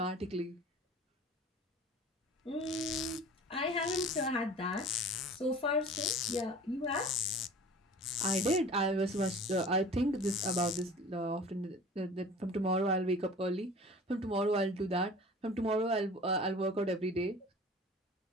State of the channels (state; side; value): normal; both; correlation 0.43